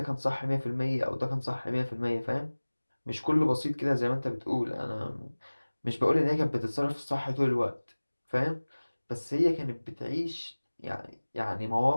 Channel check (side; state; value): both; inverted; correlation -1.00